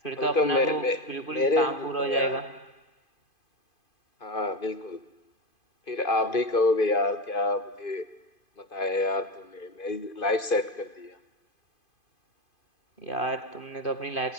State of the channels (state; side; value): late; right; 2.5 ms